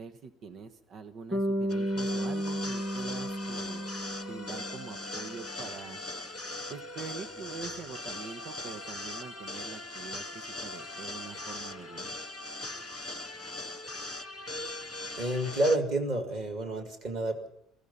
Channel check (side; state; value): both; normal; correlation 0.67